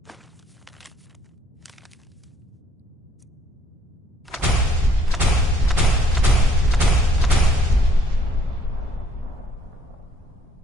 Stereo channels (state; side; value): normal; both; correlation 0.63